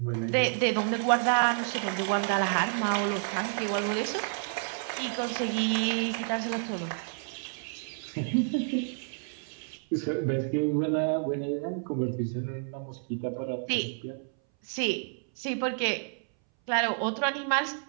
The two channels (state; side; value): silent; left; 58 dB below the other